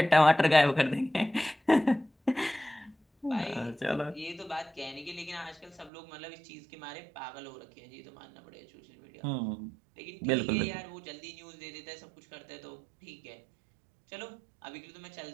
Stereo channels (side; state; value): left; drops out; at 5.9 s